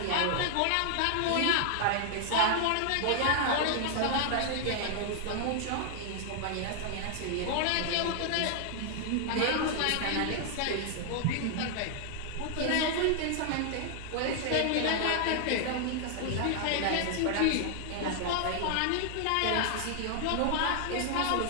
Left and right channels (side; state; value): both; different; correlation 0.00